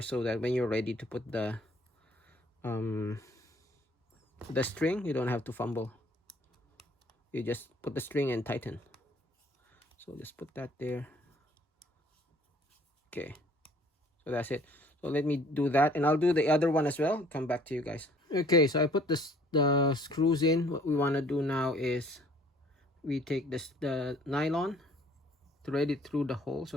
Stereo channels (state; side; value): normal; both; correlation 0.57